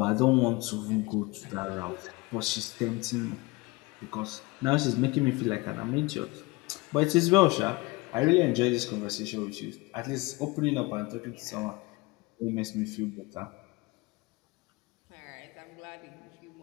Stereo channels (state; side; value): quieter; right; 23.8 dB